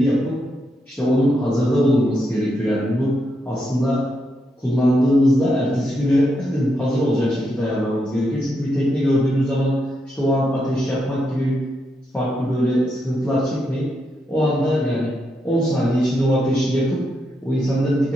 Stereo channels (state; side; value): normal; both; correlation 0.82